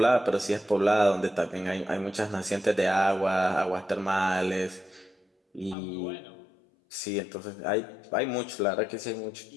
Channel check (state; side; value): drops out; right; at 5.8 s